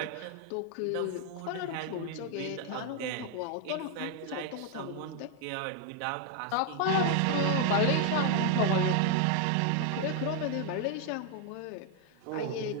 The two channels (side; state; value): both; different; correlation 0.00